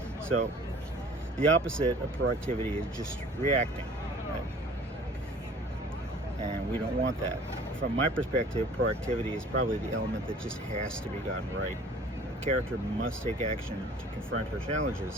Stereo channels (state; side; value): normal; both; correlation 0.49